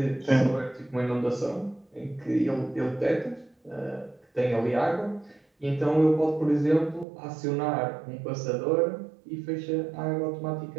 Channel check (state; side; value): drops out; left; at 7.1 s